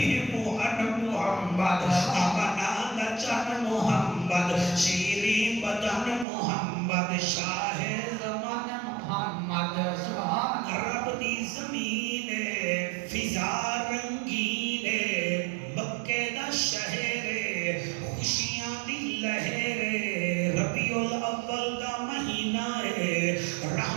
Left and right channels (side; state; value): left; drops out; at 6.2 s